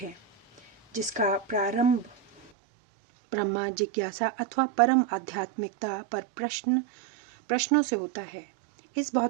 जिसका प्रारंभ ब्रह्मा जिज्ञासा अथवा परम आध्यात्मिकता पर प्रश्नों से होता है। इस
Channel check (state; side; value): drops out; left; at 2.5 s